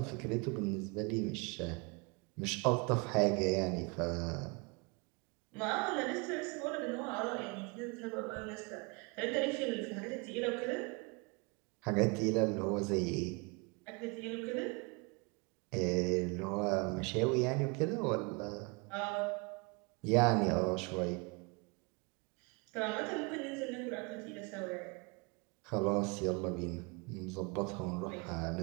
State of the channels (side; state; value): left; quieter; 30.1 dB